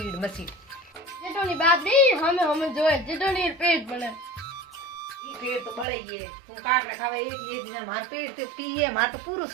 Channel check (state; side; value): drops out; left; at 5.9 s